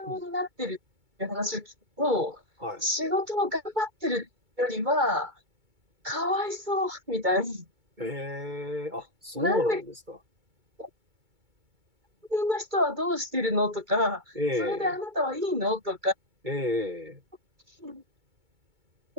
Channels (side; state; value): left; late; 2.2 ms